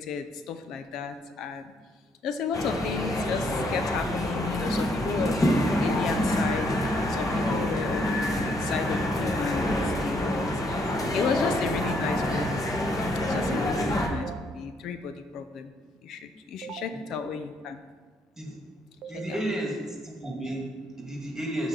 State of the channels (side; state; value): both; normal; correlation 0.71